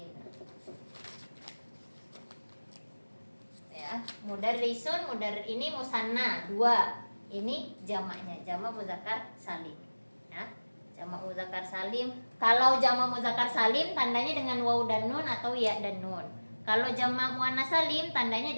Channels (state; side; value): inverted; both; correlation -1.00